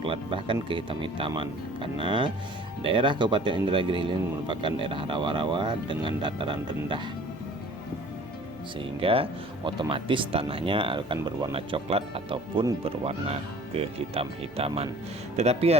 bahkan kehitam-hitaman, karena daerah Kabupaten Indragiri Hilir merupakan daerah rawa-rawa dengan dataran rendah, sehingga otomatis tanahnya akan berwarna coklat ataupun berwarna kehitam-hitaman. Tetapi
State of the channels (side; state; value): right; noise; hum, 25 dB below the sound